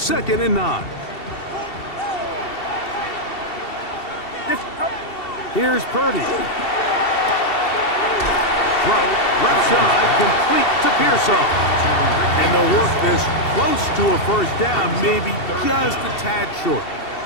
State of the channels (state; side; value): late; right; 2.7 ms